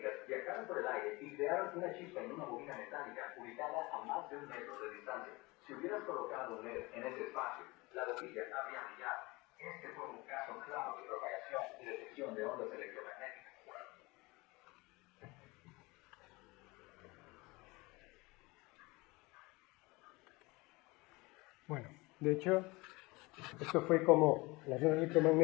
viajaron por el aire y crearon una chispa en una bobina metálica ubicada a más de 1 metro de distancia. Si hubieras colocado un LED en ese espacio, la bobilla habría brillado. Este fue un caso claro de propagación y detección de ondas electromagnéticas. Bueno, de hecho, esto fue como las ondas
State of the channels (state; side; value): quieter; right; 23.5 dB